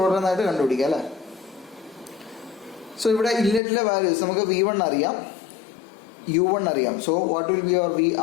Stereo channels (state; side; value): drops out; right; at 3.6 s